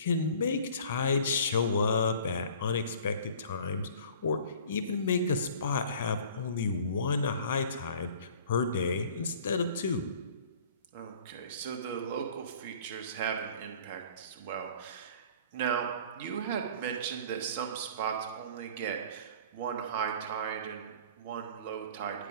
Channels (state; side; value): inverted; both; correlation -0.48